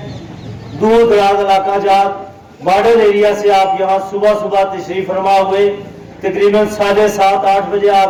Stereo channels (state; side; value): identical; both; correlation 1.00